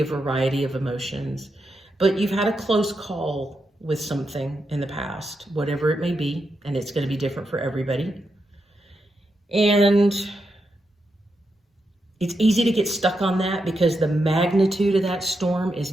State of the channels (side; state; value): both; normal; correlation 0.85